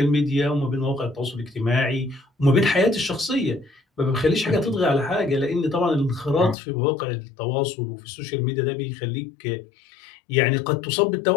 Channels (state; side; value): drops out; right; at 6.6 s